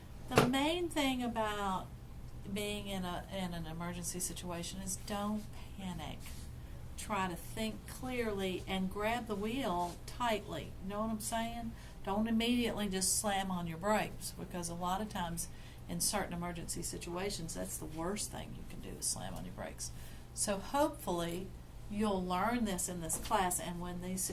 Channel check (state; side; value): identical; both; correlation 1.00